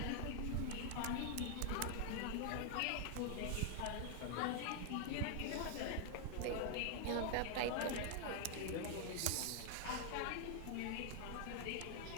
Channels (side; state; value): both; different; correlation 0.00